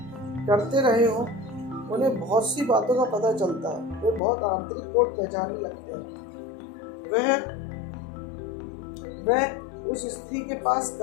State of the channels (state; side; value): drops out; right; at 4.2 s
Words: करते रहे हो, उन्हें बहुत सी बातों का पता चलता है, वे बहुत आंतरिक कोड पहचानने लगते हैं। वह उस स्त्री के पास